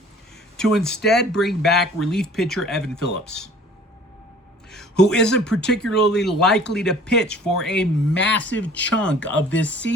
to instead bring back relief pitcher Evan Phillips, who isn't particularly likely to pitch for a massive chunk of this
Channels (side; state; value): both; normal; correlation 0.50